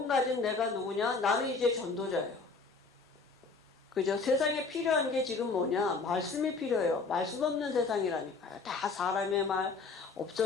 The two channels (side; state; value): right; quieter; 4.2 dB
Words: 가진 내가 누구냐? 나는 이제 전도자예요. 그죠? 세상에 필요한 게 지금 뭐냐? 말씀이 필요해요. 말씀 없는 세상이라니까요. 다 사람의 말,